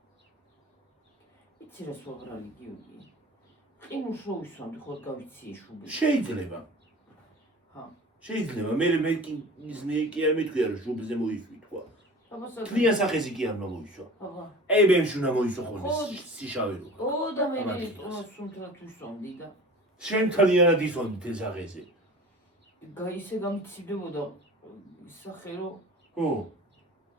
იცი რა სოღრალი გიოგი. ყინულს რო ვისვამდი ხო გავიცი შუბი. შეიძლება. ჰა. შეიძლება მე კი არ მეთქვია რომ შუბზე მოისვი თქვა. აბასა. თლიან სახეზე კი არ მოისვა. აბა. აი ბემში უნდა მოისვა ხოლმე სიშავე რო. ო და მე სუნთრად ვისვამდი და შენ თლიანად ისვამდი თელ სახეზე. ისე გამიცივდებოდა სახე რო ხო.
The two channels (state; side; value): normal; both; correlation 0.40